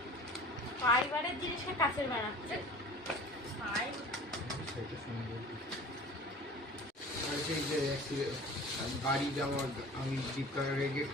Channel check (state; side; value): normal; both; correlation 0.42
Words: ফাইবারের জিনিসকে কাছের বানাচ্ছে। সেটা সুন্দর। আর সেই যে বাড়ি যাওয়ার আমি ফ্লিপকার্টে রেখে